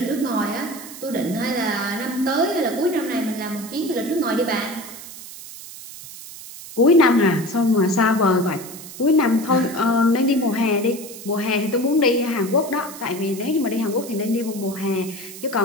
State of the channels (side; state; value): right; noise; hiss, 14 dB below the sound